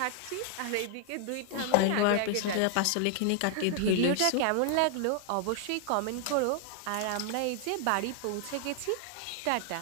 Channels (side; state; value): both; different; correlation 0.00